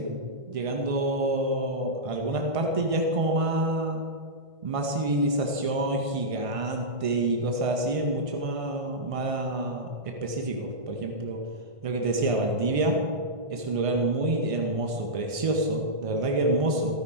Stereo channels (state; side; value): late; left; 1.5 ms